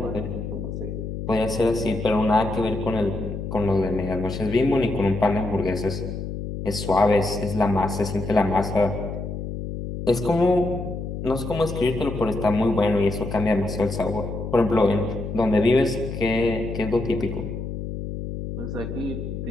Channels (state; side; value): noise; left; hum, 6 dB below the sound